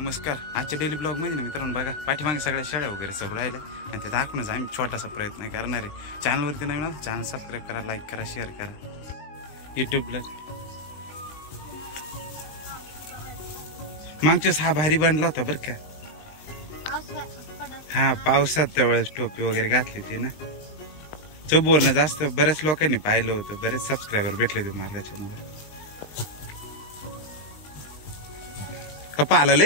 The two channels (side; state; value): right; late; 20 ms